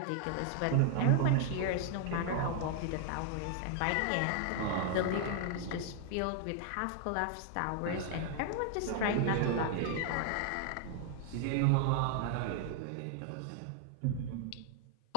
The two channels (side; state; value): both; different; correlation 0.00